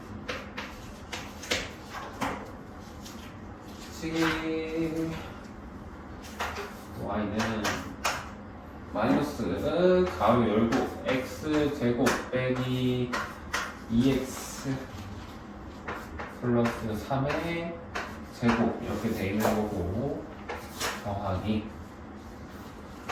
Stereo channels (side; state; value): both; identical; correlation 1.00